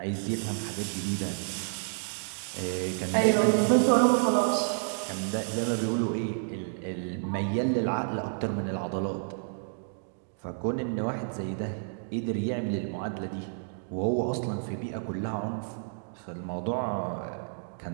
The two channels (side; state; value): left; silent; digital silence